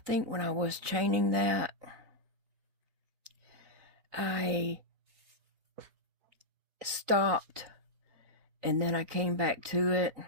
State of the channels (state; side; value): late; left; 3.9 ms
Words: when I was chaining that, I stopped, and then I came back to it,